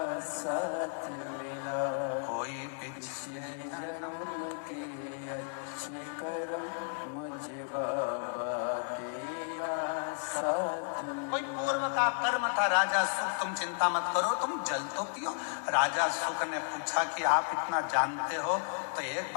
साथ मिला, कोई पिछले जन्म के अच्छे कर्म मुझे बाबा तेरा साथ मिला। कोई पूर्व का कर्म था। राजा सुख, तुम चिंता मत करो, तुम जल तो पियो। राजा सुख ने पूछा कि आप इतना जानते हो तो एक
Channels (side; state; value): right; silent; digital silence